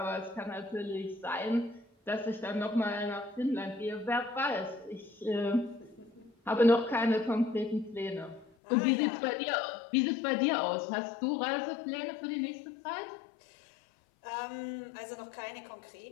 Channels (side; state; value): right; drops out; at 8.5 s